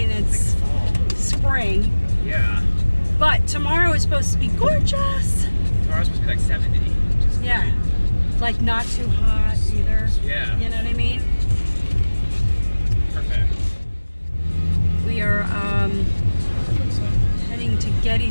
and it's spring. Yeah. But tomorrow is supposed to be gorgeous. Tomorrow's supposed to be like 70. Yeah. Like not too hot either. Yeah. You know what I mean? Perfect. We are heading to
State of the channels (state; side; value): inverted; both; correlation -1.00